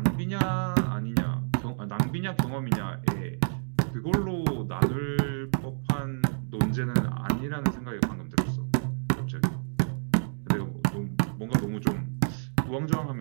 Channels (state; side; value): silent; left; digital silence